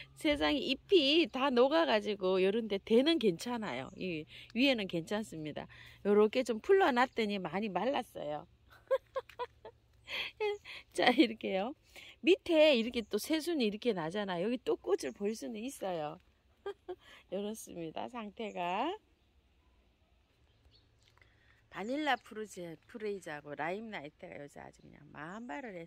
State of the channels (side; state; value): both; identical; correlation 1.00